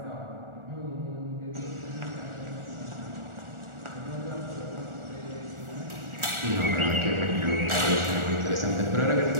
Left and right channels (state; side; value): late; left; 1.4 ms